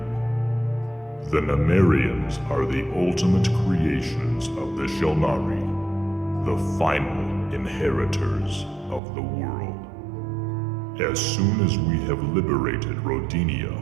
The Numerians are the ultimate creations of the Shulnari, the final inheritors of the world. As soon as we have liberated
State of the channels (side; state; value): left; drops out; at 9.0 s